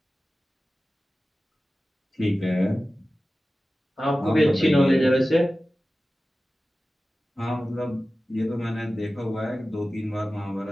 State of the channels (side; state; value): both; normal; correlation 0.96